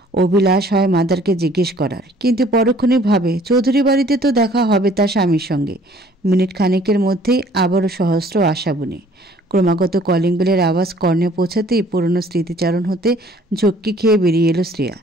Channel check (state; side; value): normal; both; correlation 0.56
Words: অভিলাষ হয় মাদারকে জিজ্ঞেস করার, কিন্তু পরক্ষণেই ভাবে চৌধুরী বাড়িতে তো দেখা হবে তার স্বামীর সঙ্গে। মিনিট খানেকের মধ্যেই আবারও সহস্র আশা বুনে। ক্রমাগত কলিং বেলের আওয়াজ কর্ণে পৌঁছাতেই পুরনো স্মৃতিচারণ হতে ঝক্কি খেয়ে বেরিয়ে এলো শ্রেয়া।